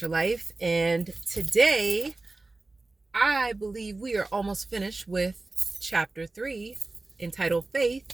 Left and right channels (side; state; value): left; quieter; 3.2 dB